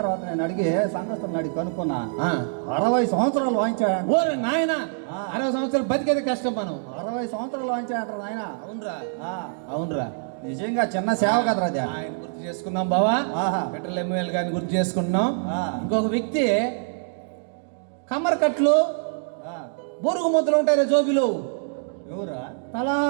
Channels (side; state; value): left; silent; digital silence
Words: నేను అడిగి సంఘస్థుని అడిగి కనుక్కున్నా ఆ. 60 సంవత్సరాలు వాయించాడు ఓరే నాయన 60 సంవత్సరాలు బతికేది కష్టం మనం 60 సంవత్సరాలు వాయించాడు నాయన అవునరా అవునరా నిజంగా చిన్న సేవ కదరా అది. ఆయన గుర్తు చేసుకున్నాం బావా ఆహా. పెట్రోల్ ఎమ్మెల్యే గారిని గుర్తు చేసుకున్నాం ఆ. ఇంకొక వ్యక్తి కమ్మర్ కట్లు ఆ, బొరుగు ముద్దలు ఉంటాయి జోబిలు ఎవరా